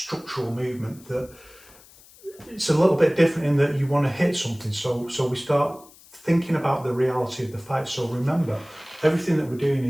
movement, that it's a little bit different in that you want to hit something. So we start thinking about the reality of the fight. So remember, everything that we're doing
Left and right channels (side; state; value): left; noise; hiss, 24 dB below the sound